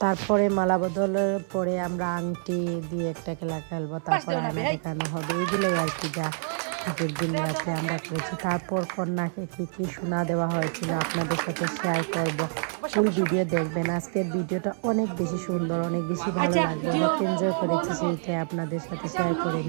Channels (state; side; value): silent; left; 60 dB below the other